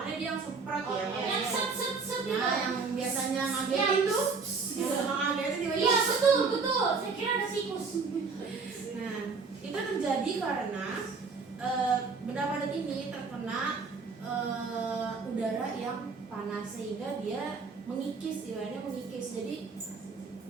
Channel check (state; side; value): quieter; left; 4.7 dB